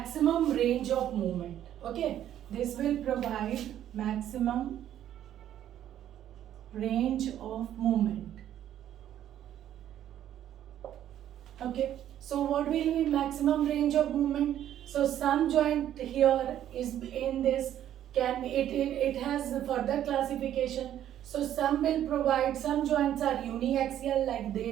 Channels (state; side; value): quieter; left; 11.3 dB